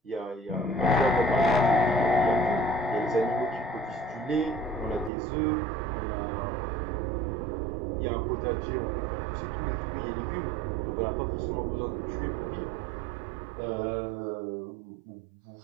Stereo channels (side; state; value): left; drops out; at 5.1 s